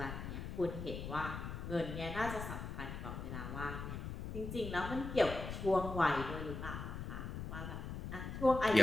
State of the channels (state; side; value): noise; left; rumble, 6 dB below the sound